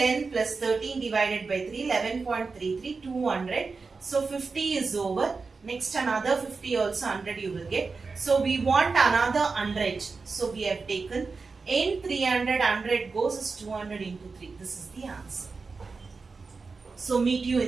plus 13 divided by 3, 11.33, 200. So 50 is over. Next another 50 also 100 you will get. So we want another 100. So we have taken in 300, 100 goes is 200 into 3. This is the answer. So meet you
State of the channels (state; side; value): quieter; left; 4.4 dB